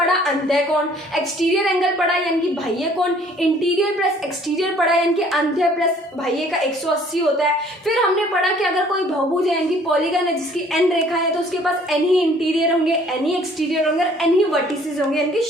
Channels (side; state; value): both; normal; correlation 0.57